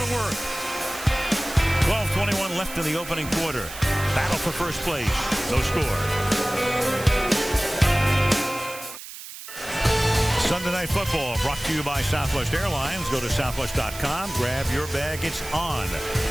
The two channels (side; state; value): right; noise; hiss, 13 dB below the sound